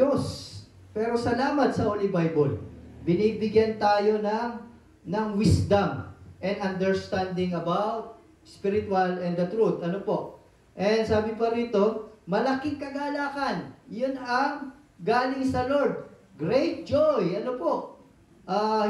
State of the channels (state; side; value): identical; both; correlation 1.00